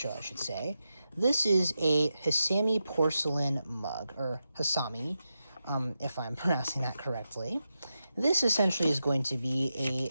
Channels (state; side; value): inverted; both; correlation -0.89